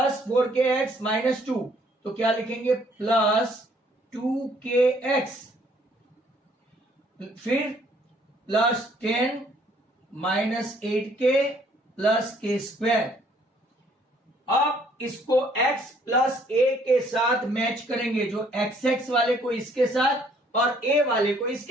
4kx -2 तो क्या लिखेंगे, प्लस 2kx। फिर प्लस 10 -8k प्लस k²। अब इसको x प्लस a के साथ मैच करेंगे, जो xx वाले को इसके साथ और a वाले को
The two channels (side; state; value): both; normal; correlation 0.63